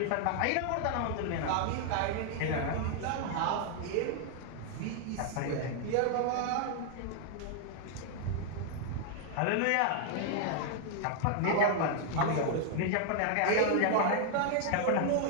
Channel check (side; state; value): both; different; correlation 0.00